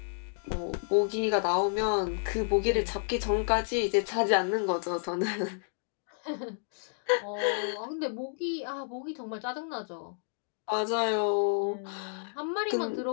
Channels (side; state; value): right; silent; digital silence